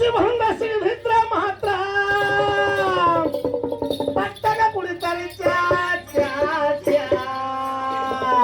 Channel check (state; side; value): identical; both; correlation 1.00